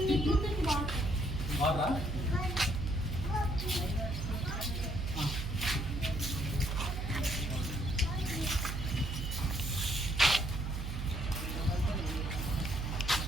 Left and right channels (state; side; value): noise; right; hum, 4 dB below the sound